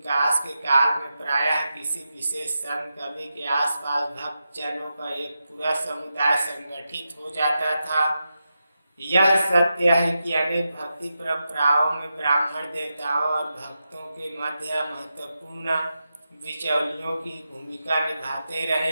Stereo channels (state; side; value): inverted; both; correlation -0.89